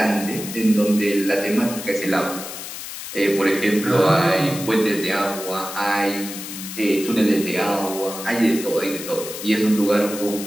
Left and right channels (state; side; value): noise; left; hiss, 9 dB below the sound